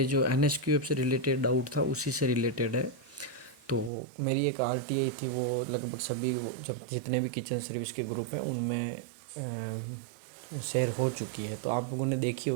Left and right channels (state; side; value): drops out; left; at 3.9 s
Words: जो एनएसक्यूएफ से रिलेटेड डाउट था उसी से रिलेटेड है। तो मेरी एक आरटीआई थी, वो लगभग सभी जब जितने भी किचन सर्विस के ग्रुप हैं उनमें शेयर हो चुकी है, तो आप लोगों ने देखी